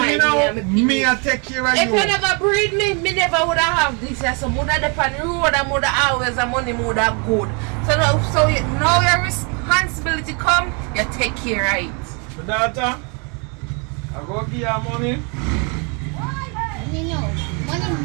now, me I take care of you. If you never breed me never would have this. So mother depend on the road and mother always and money mother good. So now your responsibility come, you take care of it. My daughter, I go give you money. No.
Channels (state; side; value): quieter; left; 34.6 dB